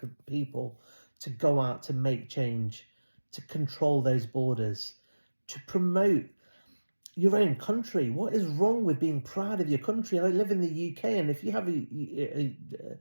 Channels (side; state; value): both; inverted; correlation -1.00